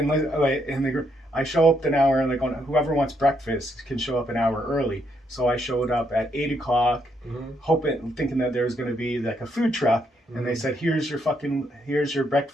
I show up an hour and whoever wants breakfast can show up an hour early. So I showed up at 8 o'clock, thinking that there was going to be like a food truck, and they said, here's your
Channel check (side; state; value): both; normal; correlation 0.75